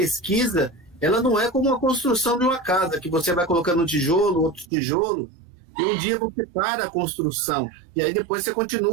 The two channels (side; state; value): left; drops out; at 4.7 s